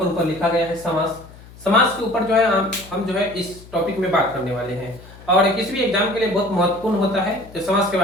ऊपर लिखा गया है समास। समास के ऊपर जो है हम जो है इस टॉपिक में बात करने वाले हैं और किसी भी एग्जाम के लिए बहुत महत्वपूर्ण होता है तो समास के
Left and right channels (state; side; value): noise; left; hum, 20 dB below the sound